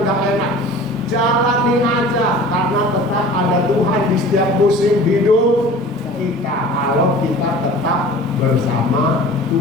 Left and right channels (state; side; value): normal; both; correlation 0.42